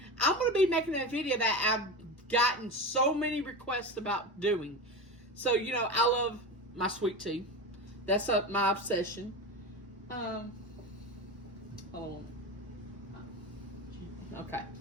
I'm going to be making a video that I've gotten so many requests about doing. So, you know, I love my sweet tea. That's my obsession. Hold on. Okay.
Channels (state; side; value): normal; both; correlation 0.24